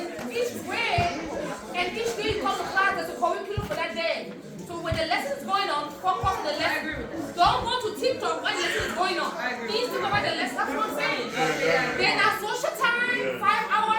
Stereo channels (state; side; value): identical; both; correlation 1.00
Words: each grade, and each day you come to class. There's a curriculum for that day. So when the lesson is going on, focus on the lesson. Don't go to TikTok when the lesson is going on. Please think about the lesson. That's what I'm saying. Then at social time, 5